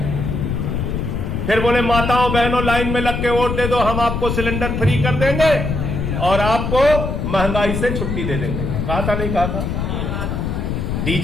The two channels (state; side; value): noise; left; rumble, 2 dB below the sound